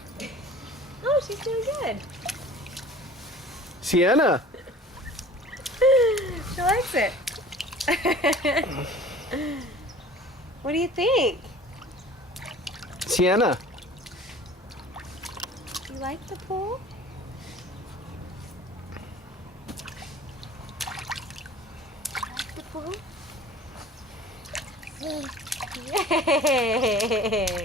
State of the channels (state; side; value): normal; both; correlation 0.44